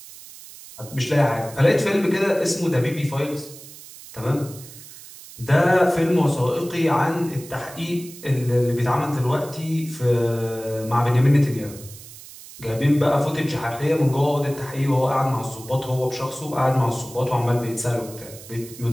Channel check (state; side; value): noise; right; hiss, 17 dB below the sound